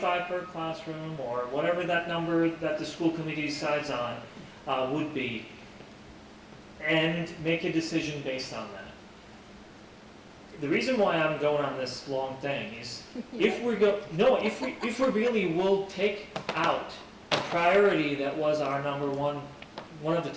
per classroom or whatever that number that the school committee decides on would be, and make a decision based on that. The reason why I'm going on this long thing is if we really will take out a priority that was our number one of the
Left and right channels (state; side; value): identical; both; correlation 1.00